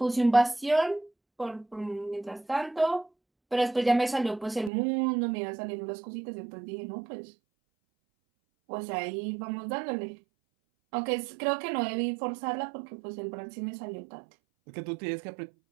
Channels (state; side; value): drops out; left; at 4.7 s